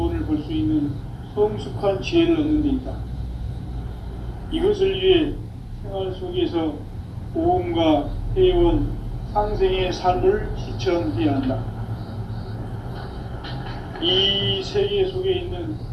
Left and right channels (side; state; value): both; identical; correlation 1.00